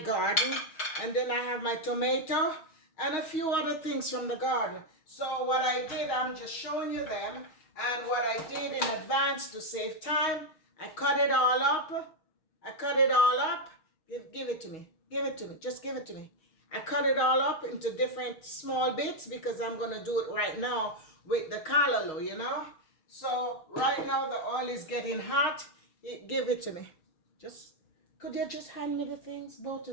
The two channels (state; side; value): late; right; 6.4 ms